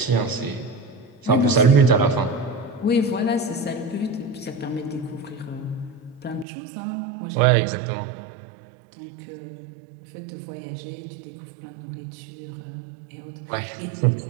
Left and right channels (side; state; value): left; drops out; at 6.5 s